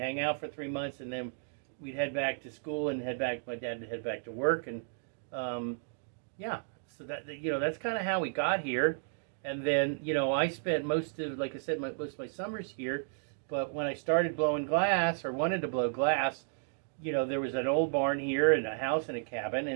out for 3 months, and then we'd head back to school and my dad would head back to work. And, so that's kind of how we got here. And then, I spent most of my summers here. But when I started blowing glass, or wanted to blow glass, there was an old barn here and a house and a cabin.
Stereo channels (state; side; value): silent; left; digital silence